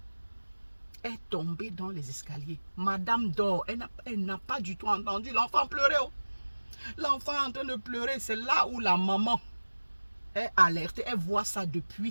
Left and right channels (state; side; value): inverted; both; correlation -1.00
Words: Est tombée dans les escaliers. Madame dort. Elle n'a pas du tout entendu l'enfant pleurer. Oh. L'enfant est en train de pleurer. C'est là où la maman est alertée. Elle voit ça depuis